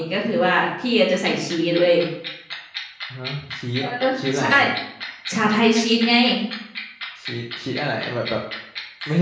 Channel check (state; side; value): identical; both; correlation 1.00